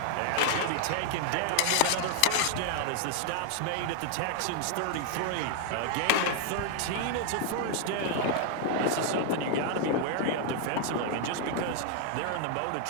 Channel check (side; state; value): both; different; correlation 0.00